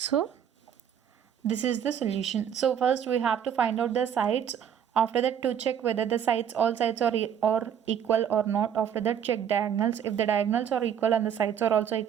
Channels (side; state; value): left; quieter; 8.8 dB